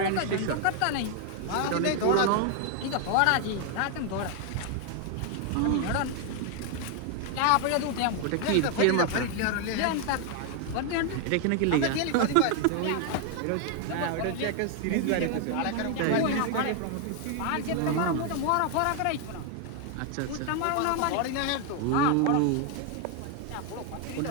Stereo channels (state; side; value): different; both; correlation 0.00